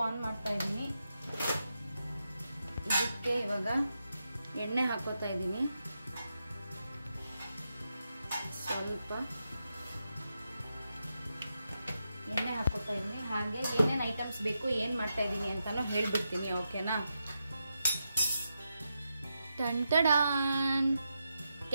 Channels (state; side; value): inverted; both; correlation -0.86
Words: on ಮಾಡ್ತಾ ಇದ್ದೀನಿ. ಇದಕ್ಕೆ ಇವಾಗ ಎಣ್ಣೆ ಹಾಕೋತಾ ಇದ್ದೀನಿ. ಸ್ವಲ್ಪ ಎಣ್ಣೆ ಹಾಕೋತಾ ಇದ್ದೀನಿ. ಹಾಗೆ ಏನೇನು ಐಟಮ್ಸ್ ಬೇಕು, ಏನು ಮಾಡ್ತಾ ಇದ್ದೀನಿ ಅಂತಾನು ಹೇಳ್ಬಿಡ್ತೀನಿ, ಓಕೆನಾ? ಟಂಟಡಾನ್!